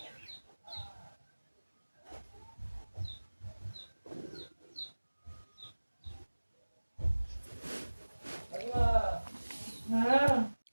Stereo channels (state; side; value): inverted; both; correlation -1.00